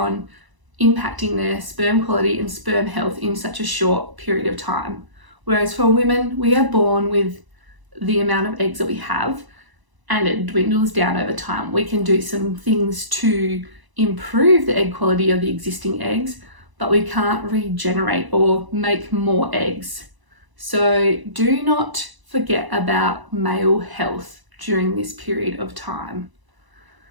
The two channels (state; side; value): late; left; 1.0 ms